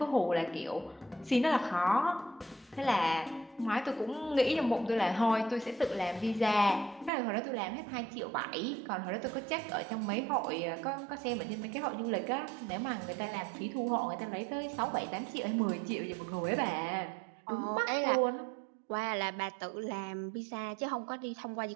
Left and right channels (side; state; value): left; drops out; at 7.1 s